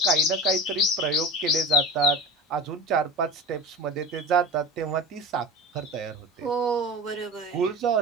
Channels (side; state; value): both; normal; correlation 0.33